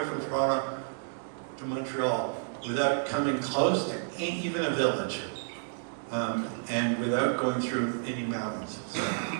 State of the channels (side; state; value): left; silent; digital silence